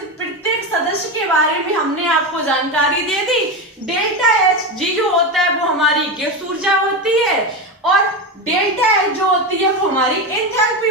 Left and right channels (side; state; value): both; normal; correlation 0.17